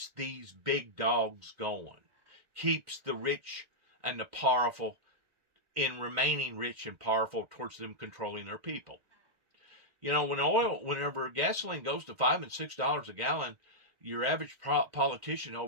these big dogs going, keeps the rich and the powerful in remaining rich and powerful towards them controlling their people. You know, whenever gasoline goes to $5 and $6 a gallon, your average politician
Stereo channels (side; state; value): left; late; 1.5 ms